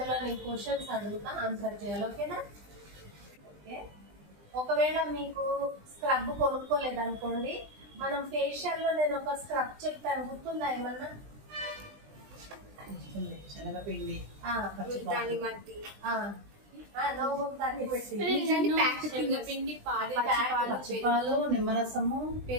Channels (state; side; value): late; left; 20 ms